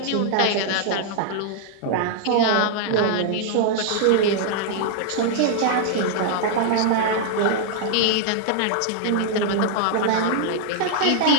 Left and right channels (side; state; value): both; different; correlation -0.01